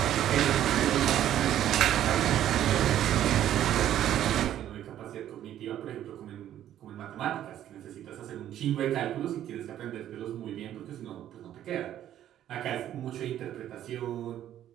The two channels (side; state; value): left; quieter; 11.6 dB